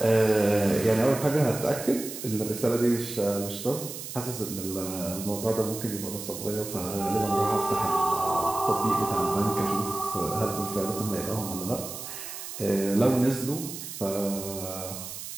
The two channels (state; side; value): noise; right; hiss, 9 dB below the sound